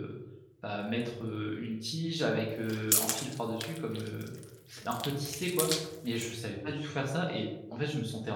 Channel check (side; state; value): both; identical; correlation 1.00